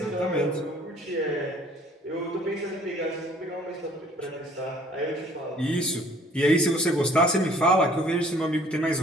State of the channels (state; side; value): normal; both; correlation 0.56